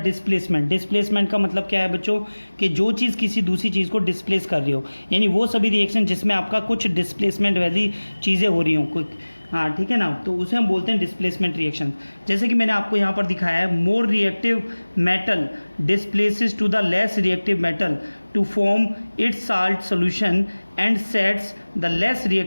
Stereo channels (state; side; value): inverted; both; correlation -1.00